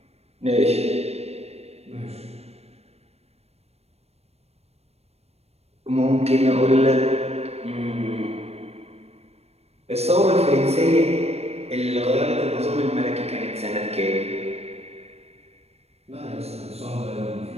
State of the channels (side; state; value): left; late; 0.30 ms